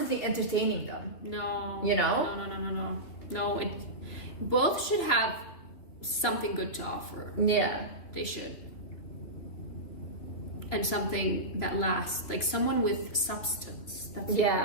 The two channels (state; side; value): late; right; 3.2 ms